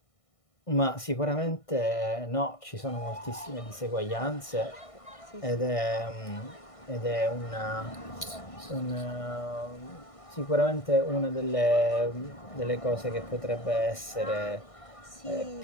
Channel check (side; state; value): right; late; 1.6 ms